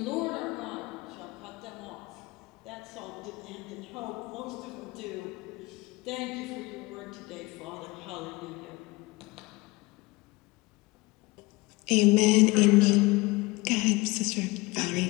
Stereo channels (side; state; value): right; quieter; 22.6 dB